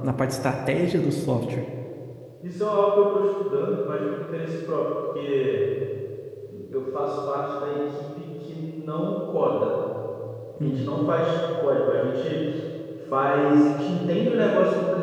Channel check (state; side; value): identical; both; correlation 1.00